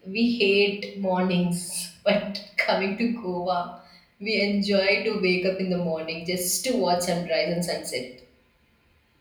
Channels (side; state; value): both; identical; correlation 1.00